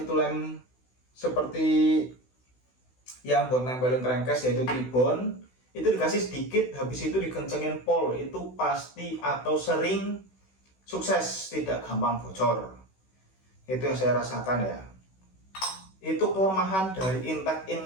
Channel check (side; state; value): right; late; 16 ms